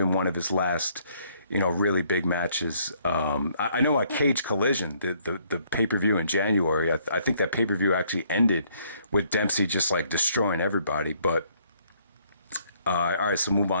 one of his last really big matches. I know at Cage Collision, the pay-per-view in January, I think that pay-per-view actually ended with Dempsey just like destroying everybody. But all right, so move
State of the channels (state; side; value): inverted; both; correlation -0.66